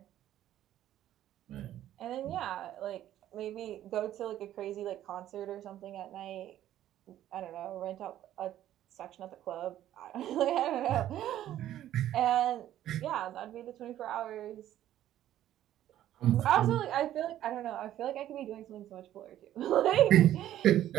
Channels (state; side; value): quieter; left; 12.4 dB